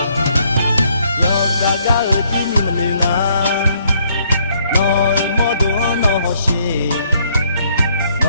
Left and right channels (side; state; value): both; inverted; correlation -0.67